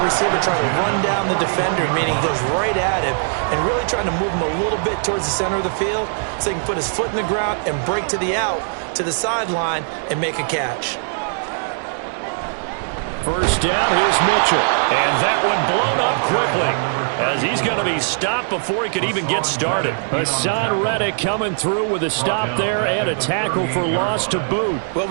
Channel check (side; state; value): left; silent; digital silence